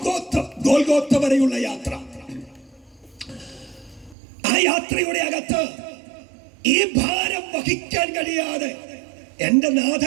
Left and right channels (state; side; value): drops out; left; at 4.2 s